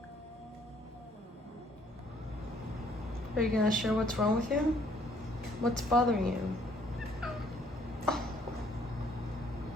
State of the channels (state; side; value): normal; both; correlation 0.63